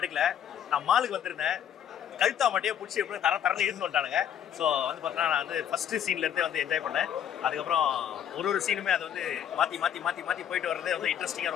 எடுக்கல. நான் மாலுக்கு வந்திருந்தேன். கழுத்தா மாட்டியே புடிச்சு எப்படி தரன்னு இழுத்து வந்துட்டானுங்க. ஸோ பார்த்தீங்கன்னா, நான் ஃபர்ஸ்ட் சீன்லேருந்தே என்ஜாய் பண்ணேன். அதுக்கப்புறம் ஒரு சீனுமே அதை மாற்றி போயிட்டு வர்றதே இன்ட்ரெஸ்டிங்காக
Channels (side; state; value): right; quieter; 9.5 dB